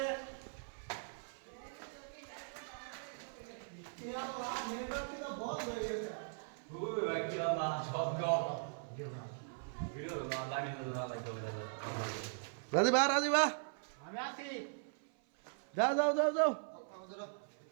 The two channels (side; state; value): left; silent; 51 dB below the other